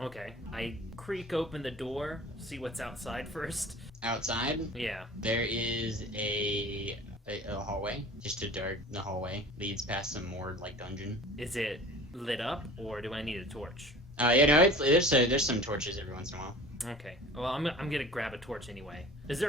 I creak open the door, see what's outside first. Outside, Yeah. there is a hallway. Just a dark the hallway. Leads past some more dungeon. Is it lit up, or do I need a torch? There's some torches every once in a while. Okay. Well, I'm gonna grab a torch anyway. Is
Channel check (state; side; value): normal; both; correlation 0.41